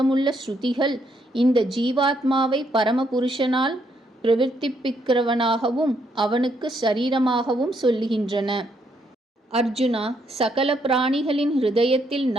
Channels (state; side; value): normal; both; correlation 0.74